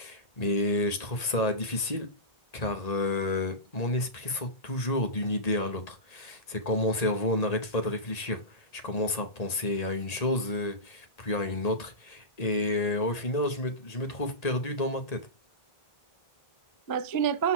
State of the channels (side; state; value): right; late; 1.8 ms